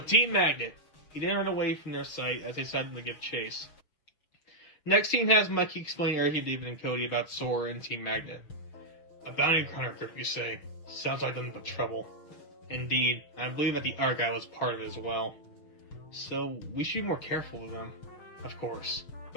Team Magnet. He then ran away from their sight as they decided to give chase. Next scene has Mikey explain everything to David and Cody about Sora and Team Magnet. A bounty hunter group, you say? Sounds like nothing but trouble. Indeed, I believe that the art guy was part of it as well. So, we should be more careful with them. Of course.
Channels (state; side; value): late; right; 6.4 ms